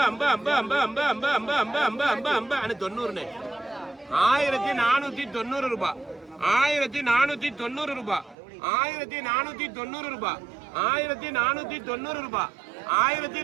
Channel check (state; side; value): drops out; left; at 8.3 s